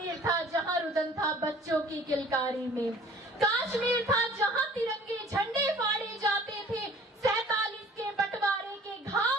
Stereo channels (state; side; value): normal; both; correlation 0.50